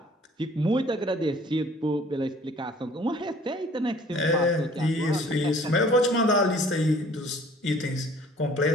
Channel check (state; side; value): normal; both; correlation 0.53